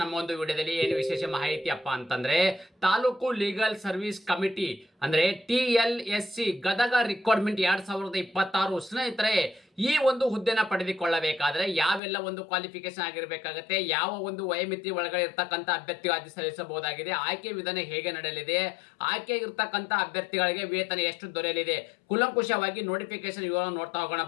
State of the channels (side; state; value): right; drops out; at 12.0 s